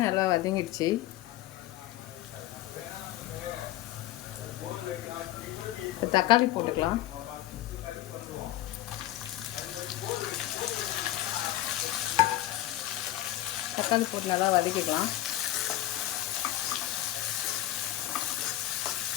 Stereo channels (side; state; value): right; quieter; 14.7 dB